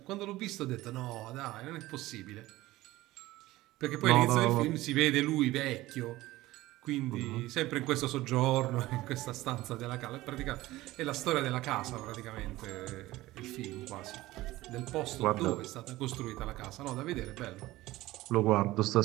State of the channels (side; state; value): left; quieter; 17.6 dB